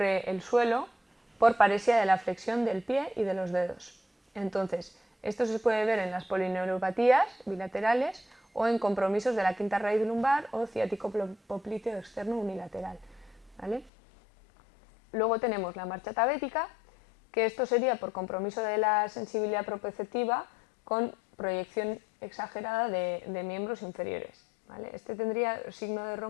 el suelo por paresia de la flexión del pie y de los dedos. Entonces, esto se puede ver en las polineuropatías bilaterales o en compromisos de la quinta raíz lumbar o ciático popliteo externo unilateral, ¿vale? Luego tenemos la marcha tabética, que esto sería por compromiso de la sensibilidad proprioceptiva con proyección exagerada de miembros inferiores, ¿vale? Este tendría signo de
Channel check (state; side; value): drops out; right; at 13.9 s